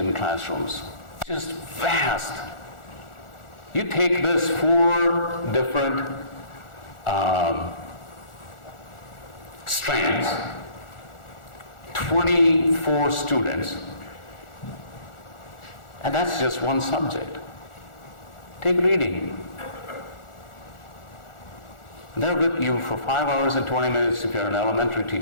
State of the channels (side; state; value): right; late; 1.4 ms